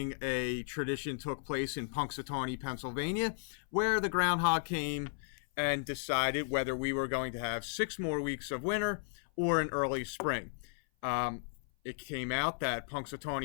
a tradition took place in Punxsutawney, Pennsylvania, where the Groundhog came and decided whether we were going to have 6 more weeks of winter or an early spring. It came out that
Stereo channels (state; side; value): silent; right; 55 dB below the other